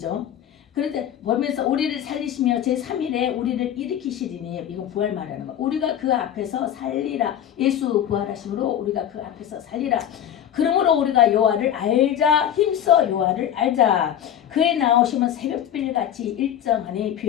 그런데 보면서 우리를 살리시며 제3일에 우리를 일으키시리니, 이건 부활 말하는 거. 우리가 그 앞에서 살리라. 예수 부활하심으로 우리가 그 앞에서 살리라. 그러므로 우리가 여호와를 알자. 힘써 여호와를 알자. 그의 나오심은 새벽빌같이 일정하니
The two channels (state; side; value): quieter; right; 10.2 dB